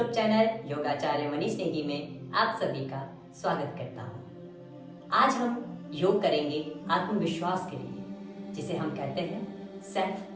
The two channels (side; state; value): both; identical; correlation 1.00